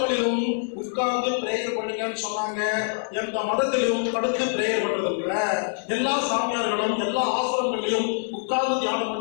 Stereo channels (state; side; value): silent; right; digital silence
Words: உட்கார்ந்து பிரேயர் பண்ணுங்கன்னு சொன்னாங்க. எந்த மதத்திலும் படுத்து பிரேயர் பண்றது இல்ல. எல்லா சாமியார்களும் எல்லா ஆசிரமங்களையும் உட்கார்ந்து தியானம்